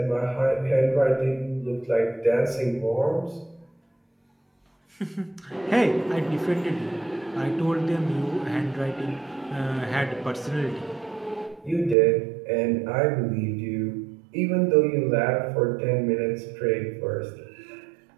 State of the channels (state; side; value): drops out; left; at 12.0 s